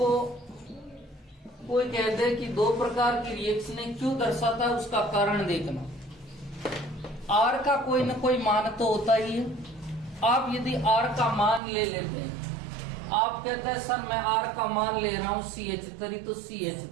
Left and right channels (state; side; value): drops out; left; at 11.6 s